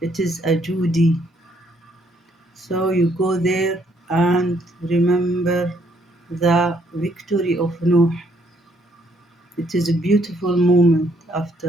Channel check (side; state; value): both; normal; correlation 0.69